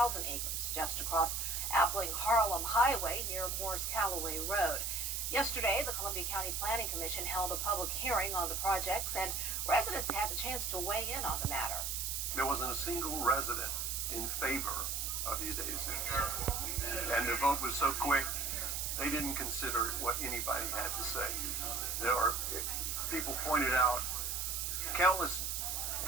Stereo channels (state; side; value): noise; right; hiss, 1 dB below the sound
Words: acres, just across Appling Harlem Highway near Morris Callaway Road. Yesterday, the Columbia County Planning Commission held a public hearing on the projects, and residents had the chance to weigh in on the matter. There wasn't a single resident in favor of these data centers, and the vote was so quick, they didn't consider what anybody had to say. People pointed out countless